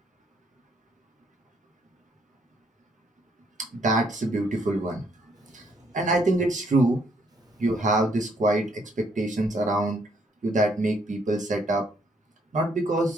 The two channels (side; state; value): both; normal; correlation 0.70